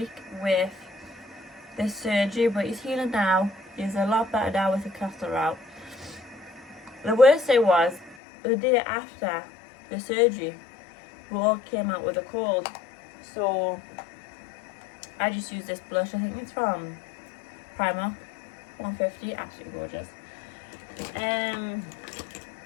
with this surgery, but he's healing now. He's a lot better now with the catheter out. The worst thing was, the day after the surgery, we all came out with a cold. So I just used this blush. I think it's from Primark, 150, absolutely gorgeous.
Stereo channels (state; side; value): drops out; right; at 8.2 s